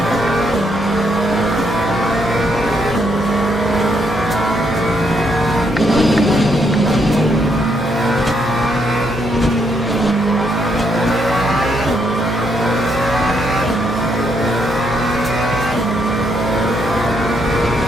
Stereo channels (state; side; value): normal; both; correlation 0.75